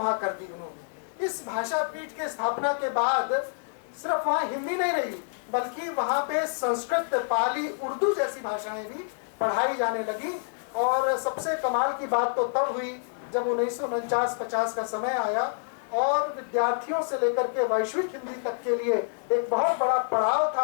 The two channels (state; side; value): silent; right; digital silence